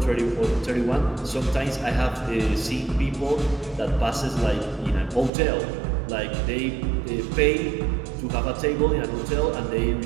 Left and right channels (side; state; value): left; drops out; at 5.3 s